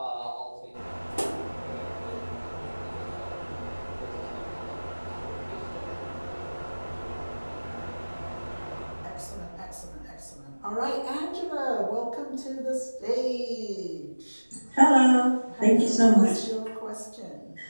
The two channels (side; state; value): both; inverted; correlation -1.00